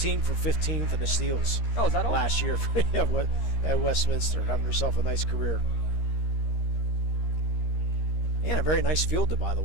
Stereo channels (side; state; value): right; late; 13 ms